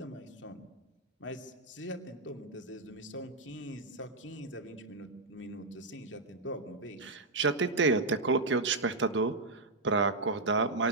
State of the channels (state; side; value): quieter; left; 3.1 dB